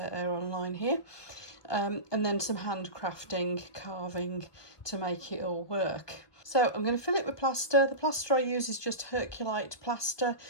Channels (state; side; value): late; right; 1.2 ms